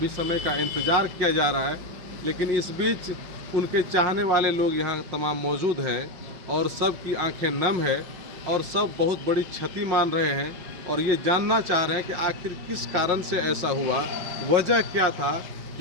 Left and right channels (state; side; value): late; left; 5.6 ms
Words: समय का इंतज़ार किया जा रहा है, लेकिन इस बीच उनके चाहने वाले लोग यहाँ तमाम मौजूद हैं और सब की आंखें नम है और सब बहुत बड़ी क्षति मान रहे हैं और ये जानना चाह रहे हैं कि आखिर किस कारण से ऐसा हुआ, वजह क्या था